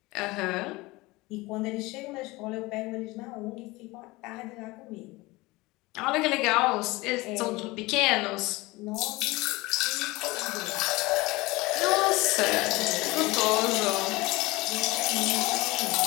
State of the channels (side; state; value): right; quieter; 21.8 dB